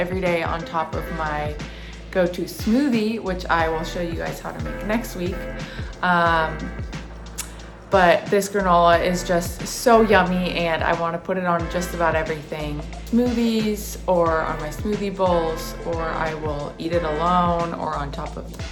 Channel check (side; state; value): both; identical; correlation 1.00